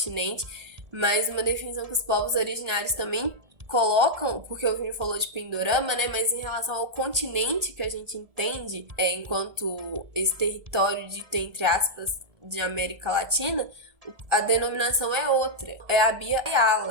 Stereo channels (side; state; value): left; late; 1.4 ms